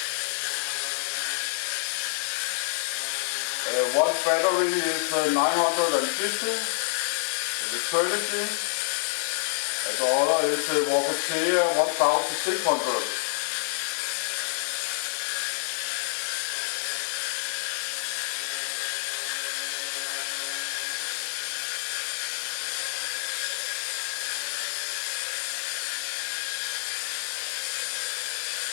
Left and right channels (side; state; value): right; silent; digital silence